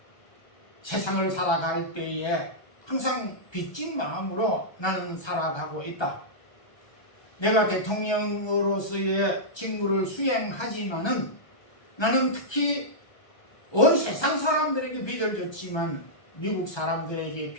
세상을 살아갈 때에 항상 빚진 마음으로 나는 살아가고 있다. 내가 대통령으로서의 직무를 수행하지만은 나는 특히 온 세상 사람들에게 빚을 졌지만 미국 사람들에게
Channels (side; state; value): right; late; 1.3 ms